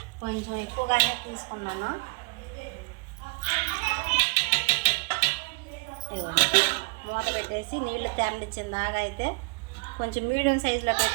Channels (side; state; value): left; quieter; 30.0 dB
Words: కొంచెం ఎక్కువగానే తీసుకున్నాను. ఇదిగోండి మూత పెట్టేసి నీళ్లు తెరలిచ్చిన దాకా అయితే కొంచెం మీడియం సైజులో